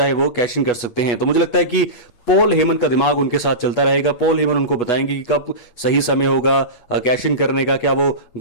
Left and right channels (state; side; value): late; right; 8.7 ms